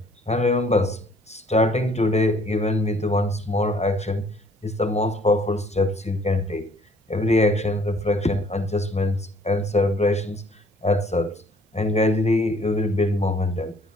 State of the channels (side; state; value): both; normal; correlation 0.59